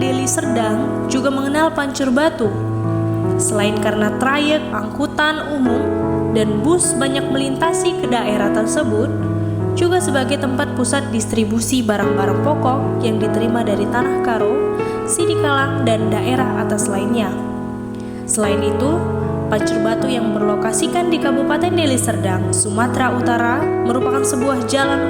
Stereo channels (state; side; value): identical; both; correlation 1.00